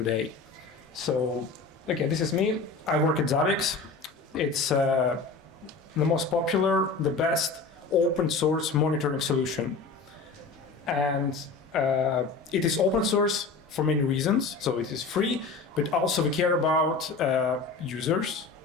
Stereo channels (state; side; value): quieter; right; 4.2 dB